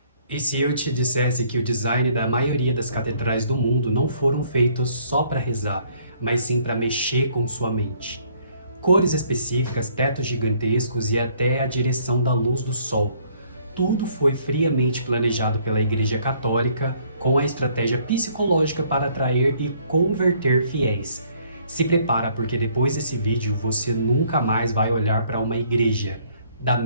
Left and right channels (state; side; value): inverted; both; correlation -0.63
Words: E se eu te dissesse que o design da maioria das catedrais do mundo não foram feitos só para rezar, mas sim para mexer com sua mente? Cores específicas, tetos gigantescos e até a direção da luz do sol. Tudo foi friamente planejado pela Igreja Católica com a estratégia psicológica para atrair e converter fiéis. Se prepara, porque depois desse vídeo você nunca mais vai olhar para uma igreja da